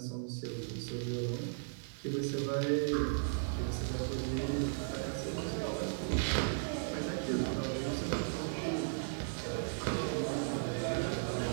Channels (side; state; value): left; silent; digital silence